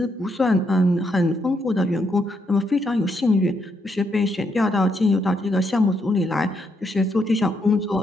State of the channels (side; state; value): both; normal; correlation 0.77